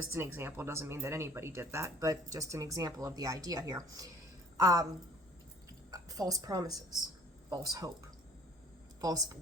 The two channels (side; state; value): both; normal; correlation 0.53